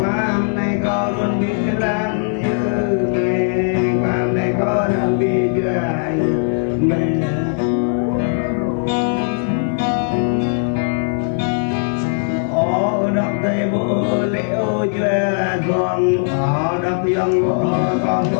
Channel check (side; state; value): right; silent; 67 dB below the other